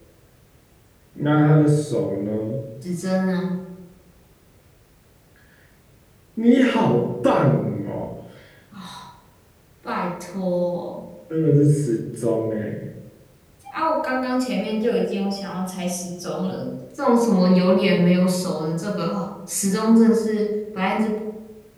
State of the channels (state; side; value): identical; both; correlation 1.00